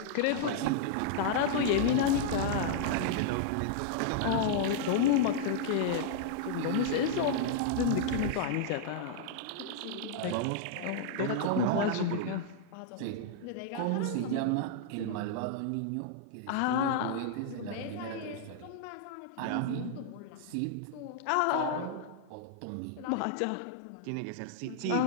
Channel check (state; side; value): different; both; correlation -0.01